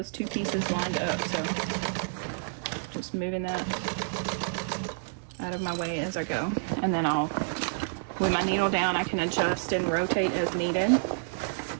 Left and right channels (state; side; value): silent; left; digital silence